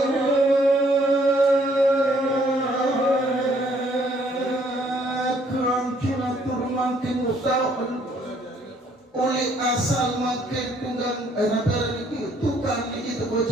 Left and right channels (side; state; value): both; normal; correlation 0.65